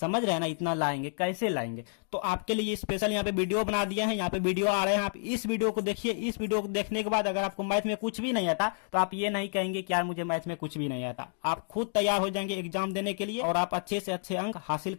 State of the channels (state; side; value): silent; right; digital silence